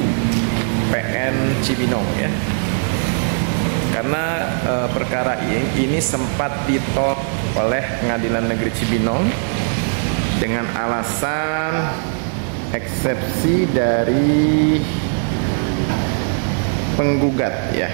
PN Cibinong ya. Karena perkara ini sempat ditolak oleh Pengadilan Negeri Cibinong dengan alasan eksepsi dari penggugat ya,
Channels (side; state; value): left; silent; 60 dB below the other